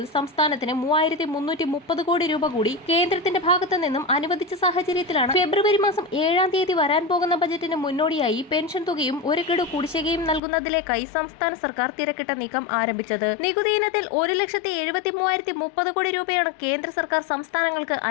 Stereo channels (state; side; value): drops out; right; at 10.4 s